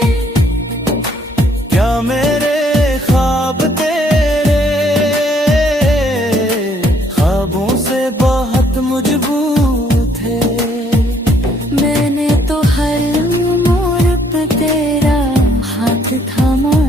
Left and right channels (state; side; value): normal; both; correlation 0.66